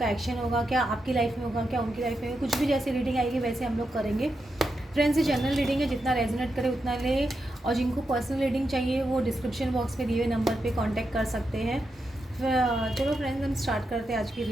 एक्शन होगा, क्या आपकी लाइफ में होगा, क्या उनकी लाइफ में, कुछ भी जैसे रीडिंग आएगी वैसे हम लोग करेंगे। फ्रेंड्स, ये जनरल रीडिंग है, जितना रेजोनेट करे उतना ले। और जिनको पर्सनल रीडिंग चाहिए वो डिस्क्रिप्शन बॉक्स में दिए हुए नंबर पे कांटेक्ट कर सकते हैं। चलो फ्रेंड्स, हम स्टार्ट करते हैं आज की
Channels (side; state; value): both; normal; correlation 0.86